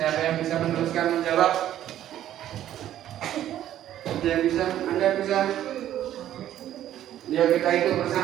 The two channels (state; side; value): quieter; left; 11.9 dB